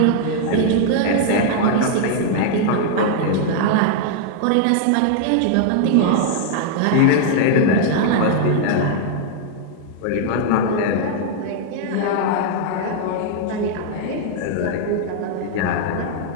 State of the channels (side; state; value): both; different; correlation -0.01